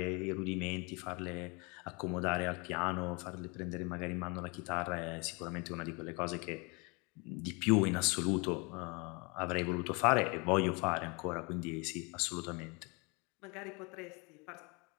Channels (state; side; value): quieter; right; 29.7 dB